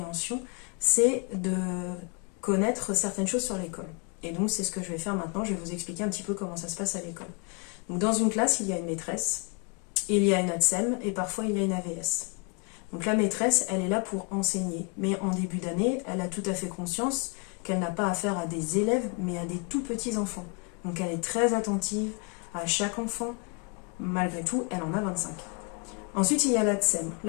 c'est de connaître certaines choses sur l'école. Et donc, c'est ce que je vais faire maintenant. Je vais vous expliquer un petit peu comment ça se passe à l'école. Donc, dans une classe, il y a une maîtresse, il y a une ATSEM et parfois il y a une AVS. Donc la maîtresse, elle est là pour enseigner, mais en début d'année, elle a tout à fait conscience qu'elle n'a pas affaire à des élèves, mais à des tout petits enfants. Donc elle est très attentive à chaque enfant. Malgré tout, elle en a 25. Ensuite, il y a l'ATSEM.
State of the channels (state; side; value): quieter; right; 30.7 dB